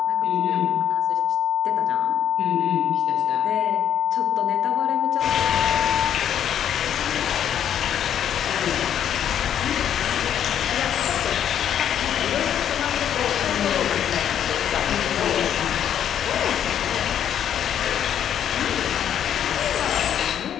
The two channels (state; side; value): quieter; right; 9.7 dB